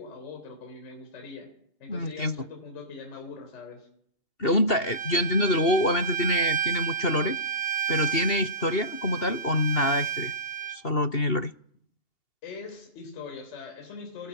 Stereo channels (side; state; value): right; late; 2.7 ms